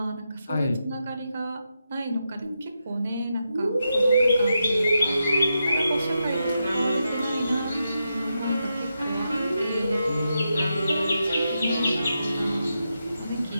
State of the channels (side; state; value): both; inverted; correlation -0.86